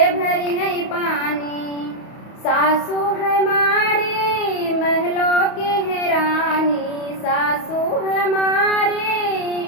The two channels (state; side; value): late; right; 31 ms